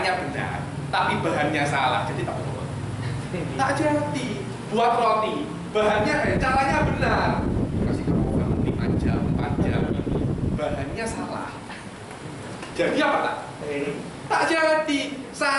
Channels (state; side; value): identical; both; correlation 1.00